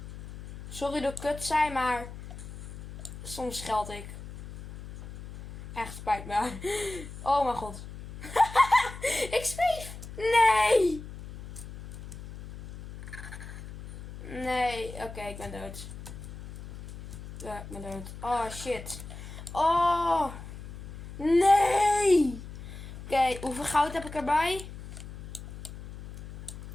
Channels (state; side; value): noise; left; hum, 12 dB below the sound